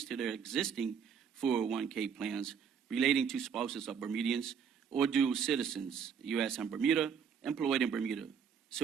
to their existing 401k plans relating to spouses of Bermudians or dual citizens, U.S. and Bermuda, employed in Bermuda,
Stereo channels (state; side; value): quieter; left; 7.1 dB